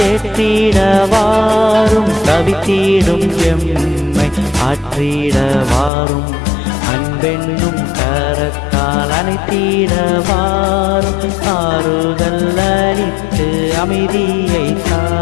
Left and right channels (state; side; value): drops out; right; at 5.9 s